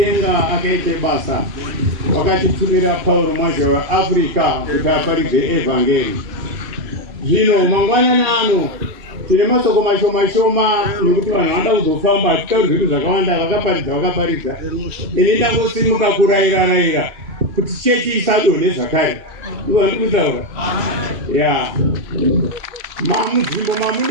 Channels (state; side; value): late; left; 2.8 ms